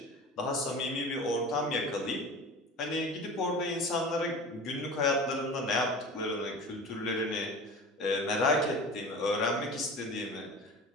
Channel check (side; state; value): both; normal; correlation 0.36